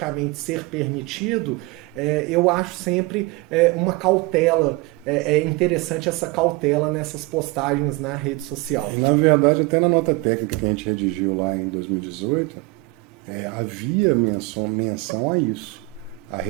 ser permitido, eu acho sempre uma cautela, interessante essa cautela nessas postagens na rede social. Na verdade, até na nota técnica que a gente redigiu lá em 2018, havia menção a isso, a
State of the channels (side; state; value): left; quieter; 23.0 dB